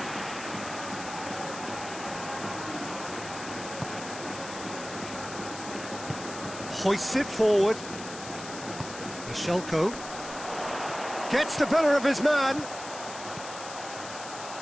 Hoists it forward. Bashelko gets the better of his man.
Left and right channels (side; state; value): left; noise; hiss, 11 dB below the sound